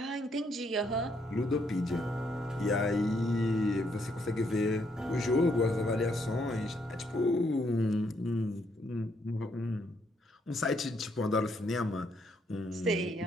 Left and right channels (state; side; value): normal; both; correlation 0.73